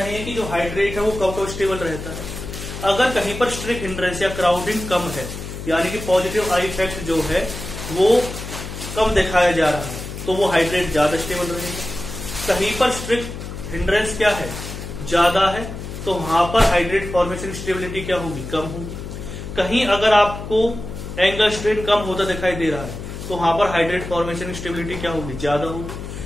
हैं कि जो हाइड्रेट है वो कब स्टेबल रहता है। अगर कहीं पर स्ट्रिक्ट हिंड्रेंस या क्राउडिंग कम है, यानी कि पॉजिटिव आई इफेक्ट जो है वो कम दिखाया जा रहा है, तो वो हाइड्रेट ज्यादा स्टेबल रहेगा। कहीं पर स्ट्रिक्ट हिंड्रेंस क्या है, ज्यादा है, तो वहां पर हाइड्रेट फॉर्मेशन स्टेबिलिटी क्या होगी, कम होगी। कहीं अगर आपको एंगल स्ट्रेन कम होता दिखाई दे रहा है तो वहां पर हाइड्रेट फॉर्मेशन स्टेबिलिटी क्या होगी, ज्यादा होगी।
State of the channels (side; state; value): left; noise; hum, 9 dB below the sound